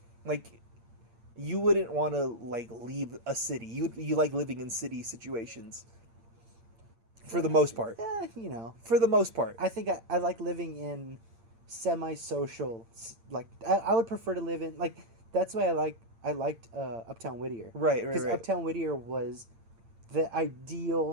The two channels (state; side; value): late; left; 8.8 ms